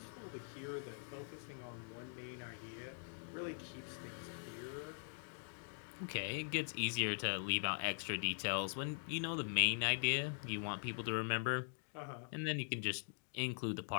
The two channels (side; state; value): right; silent; digital silence